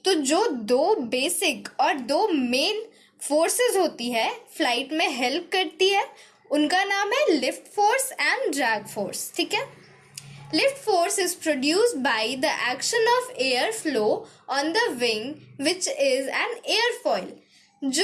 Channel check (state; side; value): identical; both; correlation 1.00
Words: तो जो दो बेसिक और दो मेन फोर्सेस होती है फ्लाइट में हेल्प करती है, उनका नाम है lift force and drag force. ठीक है, lift force is produced by the action of air flow on the wing which is an airfoil.